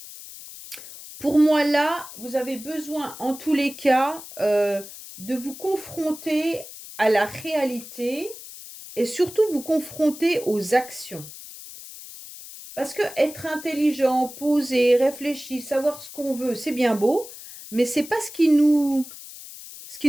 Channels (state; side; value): noise; left; hiss, 15 dB below the sound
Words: Pour moi, là, vous avez besoin, en tous les cas, de vous confronter à la réalité et surtout vous confronter aux actions. Parce que être intelligent, posé, réfléchi, savoir ce qu'on veut, c'est bien beau, mais c'est pas ce qui nous